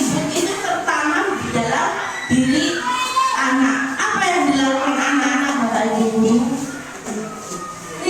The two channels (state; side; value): identical; both; correlation 1.00